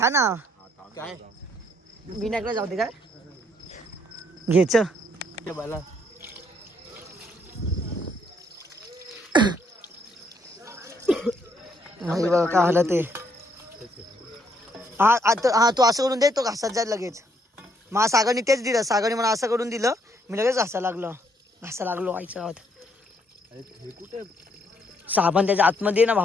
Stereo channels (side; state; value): both; normal; correlation 0.70